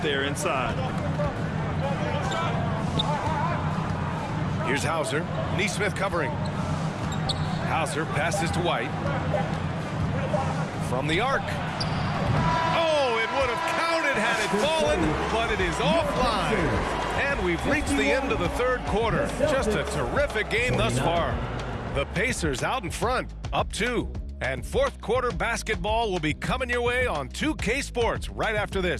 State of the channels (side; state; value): both; identical; correlation 1.00